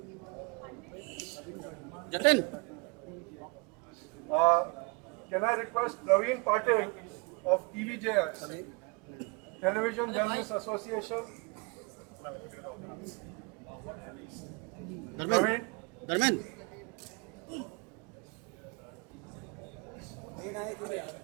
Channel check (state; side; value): quieter; left; 30.7 dB